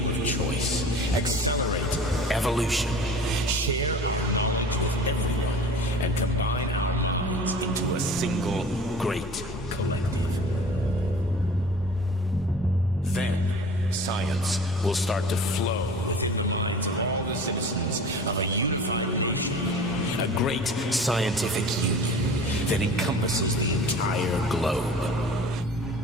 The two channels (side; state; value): both; normal; correlation 0.41